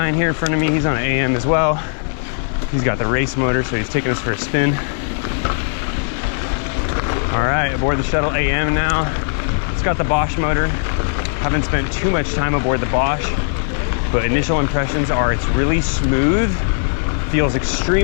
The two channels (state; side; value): silent; right; 62 dB below the other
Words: here in front of me. He's on an AM as well. He's got the race motor, so he's taking us for a spin. All right, aboard the Shuttle AM now. It's got the Bosch motor. Haven't spent too much time aboard the Bosch, but initial impressions are it's really smooth, feels